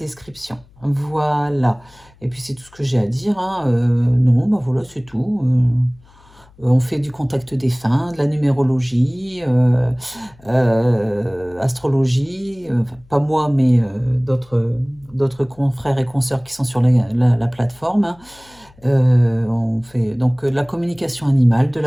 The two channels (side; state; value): left; noise; hum, 28 dB below the sound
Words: Voilà. Et puis, c'est tout ce que j'ai à dire. Hein. Non, ben voilà, c'est tout. On fait du contact défunt, de la numérologie, astrologie, enfin, pas moi, mais d'autres confrères et consoeurs qui sont sur la plateforme. Hein. On fait donc de la communication animale, de